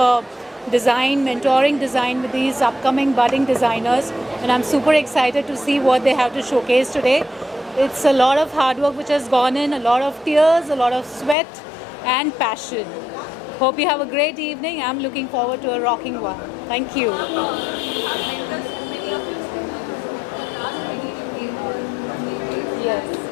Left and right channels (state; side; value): drops out; right; at 11.4 s